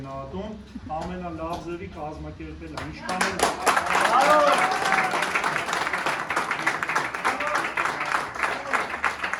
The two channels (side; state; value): both; identical; correlation 1.00